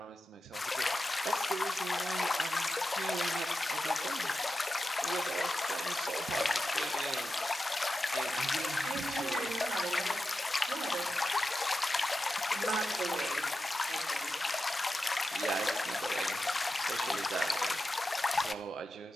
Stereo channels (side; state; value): both; normal; correlation 0.91